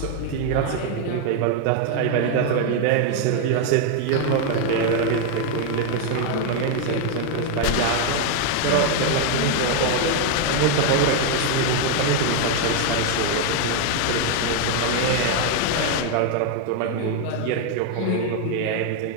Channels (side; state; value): both; different; correlation 0.01